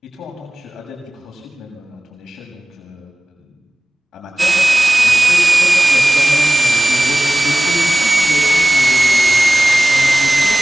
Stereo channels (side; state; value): both; normal; correlation 0.97